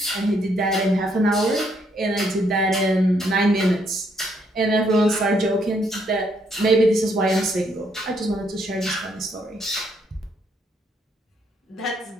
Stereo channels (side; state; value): both; normal; correlation 0.72